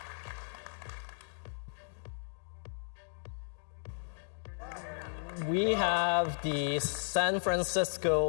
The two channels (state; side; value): silent; right; digital silence